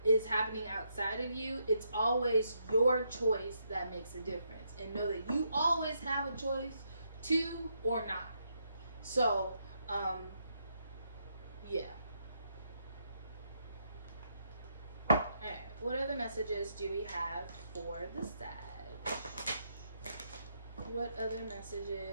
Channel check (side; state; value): both; inverted; correlation -0.77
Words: is happening outside of you, it's always your choice that makes a difference. And know that you always have a choice to or not. So, yeah. Alright, what other messages do we have for the Sag? What other